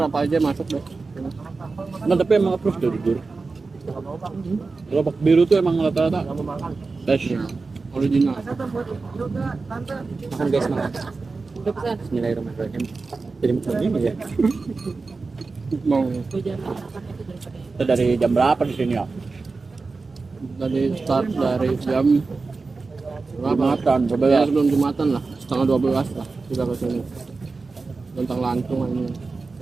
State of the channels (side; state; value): left; quieter; 4.0 dB